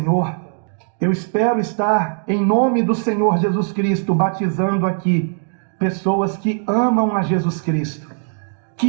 Eu espero estar, em nome do Senhor Jesus Cristo, batizando aqui pessoas que amam a Jesus Cristo,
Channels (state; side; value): silent; left; 66 dB below the other